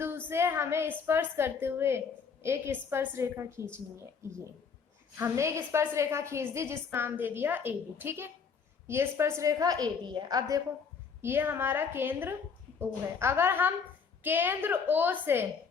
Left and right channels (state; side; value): quieter; right; 5.9 dB